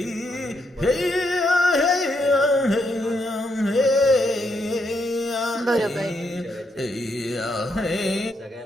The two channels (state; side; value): normal; both; correlation 0.78